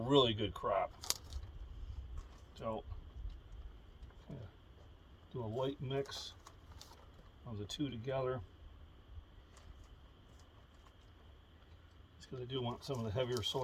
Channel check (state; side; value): identical; both; correlation 1.00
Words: good crop. So, do a light mix of the two together. Just because I do want some of the heavier